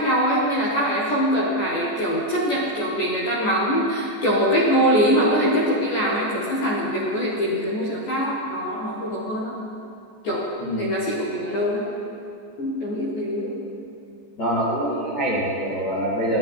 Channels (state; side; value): late; right; 14 ms